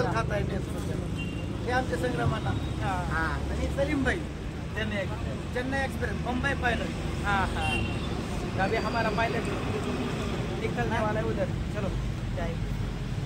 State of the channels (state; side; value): identical; both; correlation 1.00